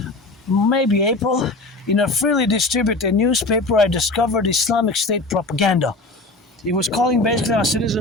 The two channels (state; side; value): quieter; right; 3.0 dB